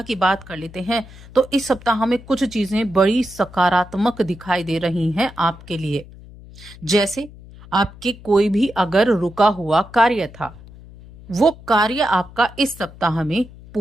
की बात कर लेते हैं तो इस सप्ताह में कुछ चीजें बड़ी सकारात्मक दिखाई दे रही हैं आपके लिए। जैसे आपके कोई भी अगर रुका हुआ कार्य था, वो कार्य आपका इस सप्ताह में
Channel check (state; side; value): noise; left; hum, 19 dB below the sound